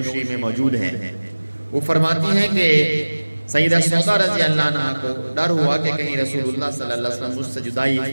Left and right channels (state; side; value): inverted; both; correlation -1.00